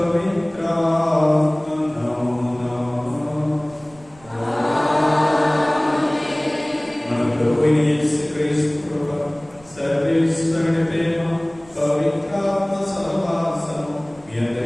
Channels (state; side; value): noise; right; rumble, 26 dB below the sound